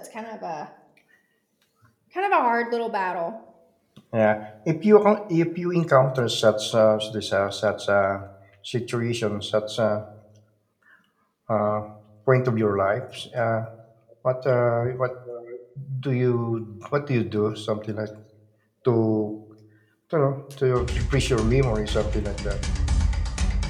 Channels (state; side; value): identical; both; correlation 1.00